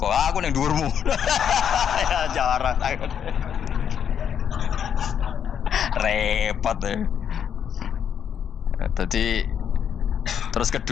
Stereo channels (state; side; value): quieter; right; 8.4 dB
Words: Aku ning dhuwurmu. Ya jarak. Repot ya. Jadi terus